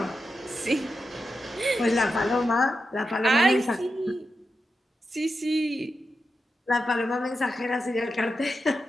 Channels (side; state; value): both; normal; correlation 0.89